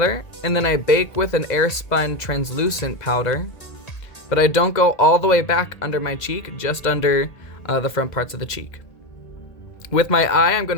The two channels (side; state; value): right; late; 2.0 ms